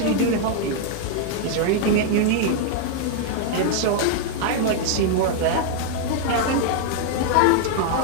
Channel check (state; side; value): different; both; correlation 0.00